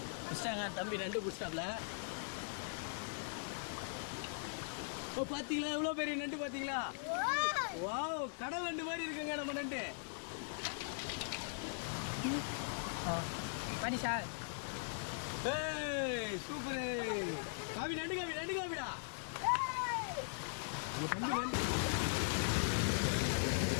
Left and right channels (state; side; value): silent; right; digital silence